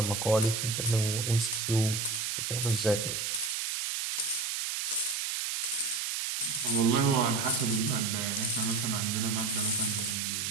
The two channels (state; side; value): noise; right; hiss, 1 dB below the sound